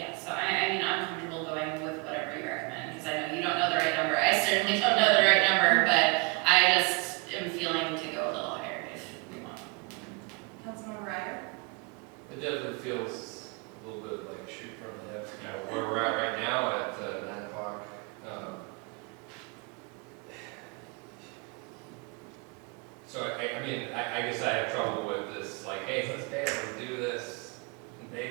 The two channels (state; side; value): quieter; left; 28.6 dB